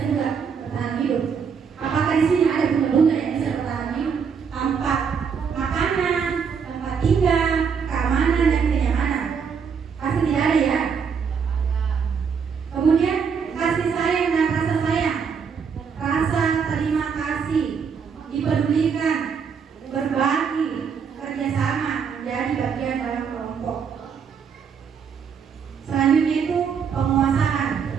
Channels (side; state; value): left; quieter; 6.5 dB